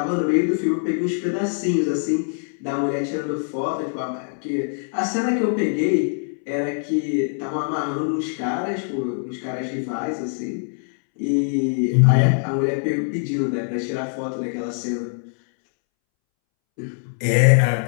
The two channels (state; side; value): silent; right; 63 dB below the other